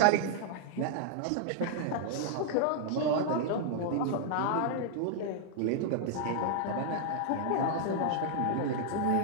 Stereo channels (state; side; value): different; both; correlation 0.00